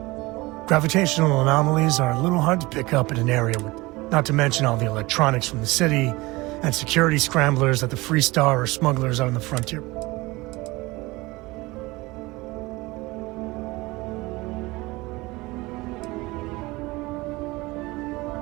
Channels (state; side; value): quieter; left; 21.8 dB